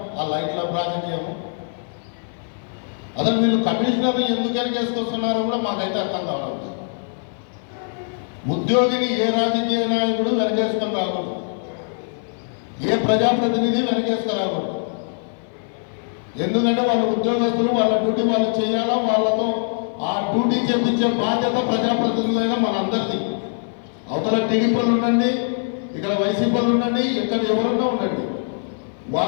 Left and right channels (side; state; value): right; silent; 61 dB below the other